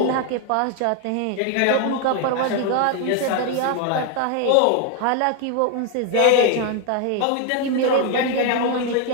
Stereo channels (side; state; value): both; different; correlation 0.01